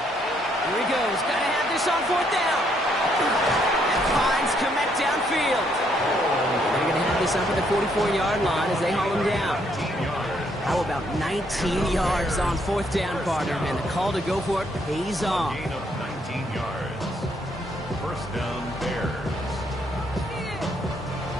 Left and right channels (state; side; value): normal; both; correlation 0.71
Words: he goes. Got to have this on fourth down. And finds Komet downfield. They're going to have this up at the 44-yard line as they haul him down. How about 19 yards on fourth down, partner? And the call to go for it pays off. Gain of 19 yards. First down, Bears.